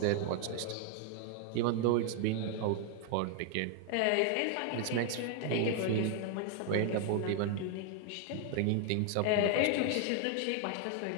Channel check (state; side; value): different; both; correlation 0.00